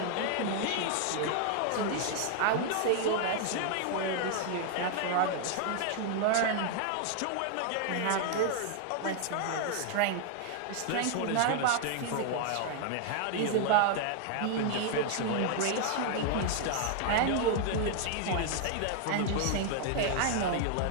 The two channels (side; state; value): both; different; correlation 0.00